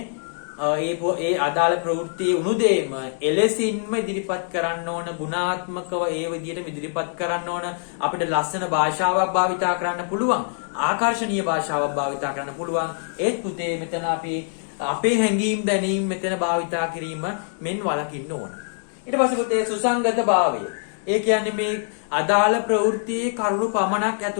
ඒ අදාළ ප්‍රවෘත්තියේ උණුදේම එලෙසින්ම ඉදිරිපත් කරන්න ඕන ගුණාත්මකව ඒ විදිහට ඉදිරිපත් කරන්න ඕන අපිට ලස්සන භාෂාවක් භාවිතා කරන්න පුළුවන් ආකර්ශනීය භාෂාවක් භාවිතා කරන්න පුළුවන් ඒත් පුතේ මෙතන අපි අපේ හැඟීම් දැනීම් මෙතන භාවිතා කිරීම මෙන් වළකින්න ඕන ඊට පස්සේ පුතේ සුසංගත භාවය ඒ කියන්නේ මේ අදාළ ප්‍රවෘත්තියේ කරුණු පමණක්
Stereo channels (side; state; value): right; silent; digital silence